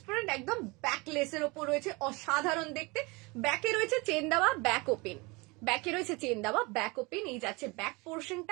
একদম ব্যাক লেসের ওপর রয়েছে, অসাধারণ দেখতে। ব্যাকে রয়েছে চেন দেওয়া, ব্যাক ওপেন, ব্যাকে রয়েছে চেন দেওয়া, ব্যাক ওপেন। এই যাচ্ছে ব্যাক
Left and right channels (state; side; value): quieter; left; 26.2 dB